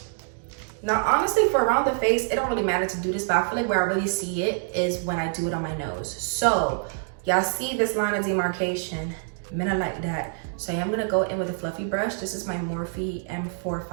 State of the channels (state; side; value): silent; left; digital silence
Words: Now, honestly, for around the face, it don't really matter to do this, but I feel like where I really see it is when I do it on my nose. So, y'all see this line of demarcation? Men are like that. So I am gonna go in with a fluffy brush. This is my Morphe